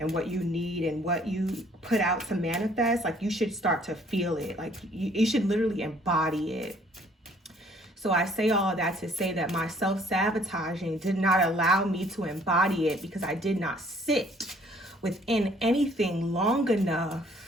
what you need and what you put out to manifest. Like, you should start to feel it. Like, you should literally embody it. So I say all of that to say that my self-sabotaging did not allow me to embody it, because I did not sit within anything long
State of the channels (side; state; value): both; normal; correlation 0.60